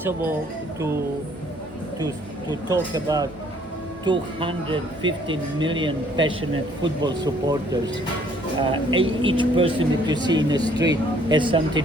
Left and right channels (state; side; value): normal; both; correlation 0.61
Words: to talk about 215 million passionate football supporters. Each person that you see in the street has